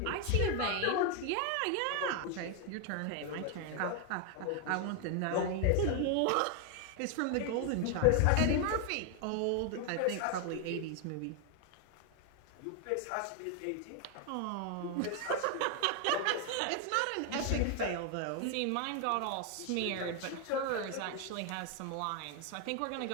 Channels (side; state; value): both; different; correlation 0.01